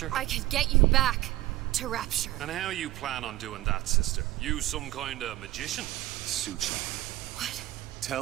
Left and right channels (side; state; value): left; quieter; 16.7 dB